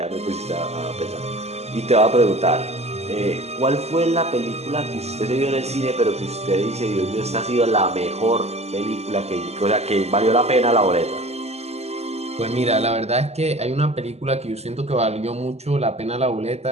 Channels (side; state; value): left; late; 0.30 ms